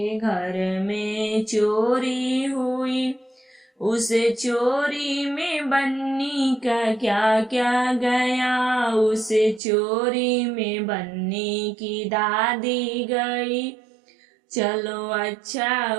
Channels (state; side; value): drops out; left; at 9.6 s